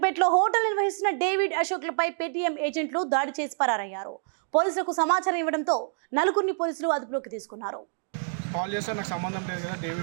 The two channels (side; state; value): left; silent; digital silence